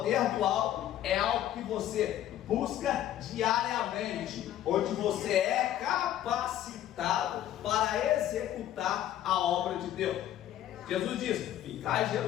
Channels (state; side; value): quieter; right; 12.0 dB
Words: do alto é algo que você busca diariamente, onde você é capacitado para executar a obra de Deus. Jesus diz: ficai em